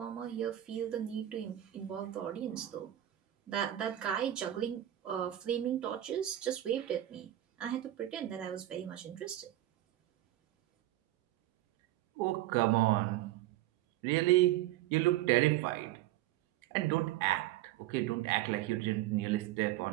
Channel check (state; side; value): quieter; left; 14.0 dB